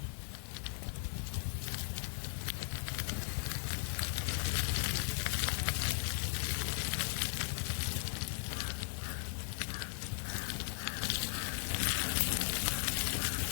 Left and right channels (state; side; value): silent; right; 53 dB below the other